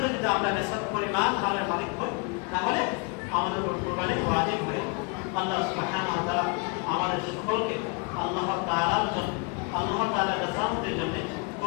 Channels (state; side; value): quieter; right; 32.4 dB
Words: যদি আমরা নেশাব পরিমাণ মালের মালিক হই, তাহলে আমাদের উপর কুরবানি ওয়াজিব হয়। আল্লাহ সুবহানাহু ওয়া তাআলা আমাদের সকলকে আল্লাহ তাআলার জন্য, আল্লাহ তাআলার রাজামতের জন্য